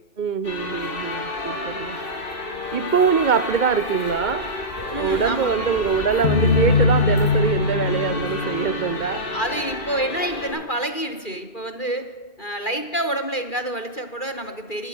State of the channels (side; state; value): right; late; 2.4 ms